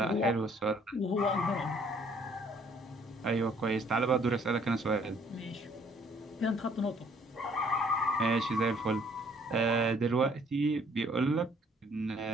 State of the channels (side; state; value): both; normal; correlation 0.61